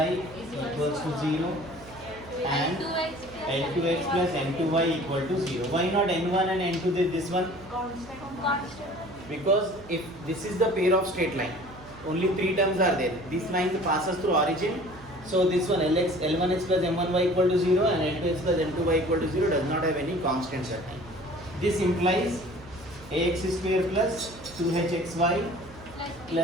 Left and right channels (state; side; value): noise; right; hum, 20 dB below the sound